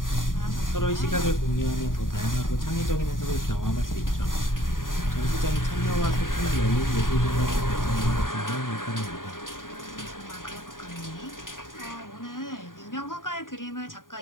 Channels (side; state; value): right; late; 0.90 ms